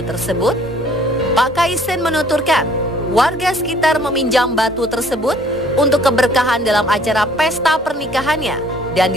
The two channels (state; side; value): normal; both; correlation 0.58